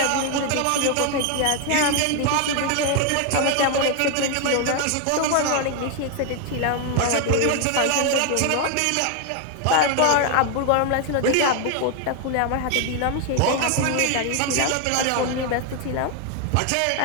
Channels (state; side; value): different; both; correlation 0.01